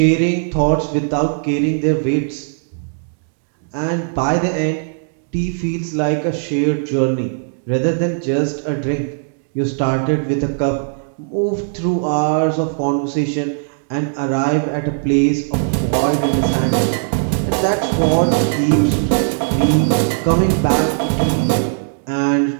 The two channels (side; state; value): left; silent; digital silence